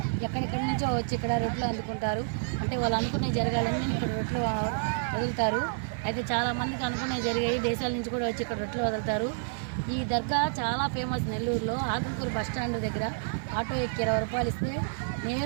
ఎక్కడెక్కడి నుంచో వచ్చి ఇక్కడ రొట్టెలు అందుకుంటారు. అంటే వాళ్ళు అనుకునే జరగాలని ఇక్కడ రొట్టెలు వదులుతారు. అయితే చాలామందికి అనుకునే జరిగాయి. దేశాల నుంచి కూడా వచ్చి ఇక్కడ రొట్టెలు వదులుతారు. ఈ దర్గా చాలా ఫేమస్ నెల్లూరులో. ఆకుకూరు బస్ స్టాండ్ దగ్గర ఆటో ఎక్కి 20 రూపాయలు ఇస్తే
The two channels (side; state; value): left; silent; digital silence